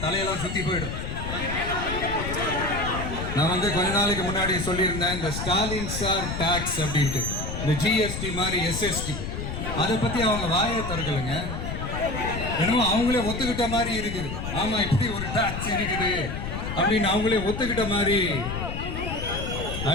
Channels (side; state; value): left; noise; rumble, 5 dB below the sound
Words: தலையெல்லாம் சுத்தி போயிடும். நான் கொஞ்ச நாளைக்கு முன்னாடி சொல்லியிருந்தேன், இந்த ஸ்டாலின் சார் டாக்ஸ் அப்படின்ட்டு, இந்த ஜிஎஸ்டி மாதிரி எஸ்எஸ்டி, அதை பத்தி அவங்க வாயை திறக்கலைங்க. என்னமோ அவங்களே ஒத்துக்கிட்ட மாதிரி இருக்குது. ஆமா, இப்படி ஒரு டாக்ஸ் இருக்குது அப்படின்னு அவங்களே ஒத்துக்கிட்ட மாதிரி